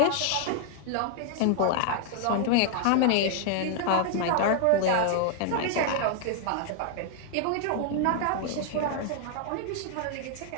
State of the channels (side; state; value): both; different; correlation 0.00